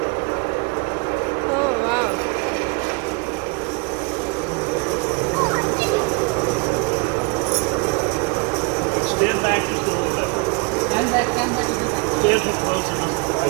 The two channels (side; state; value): left; quieter; 31.0 dB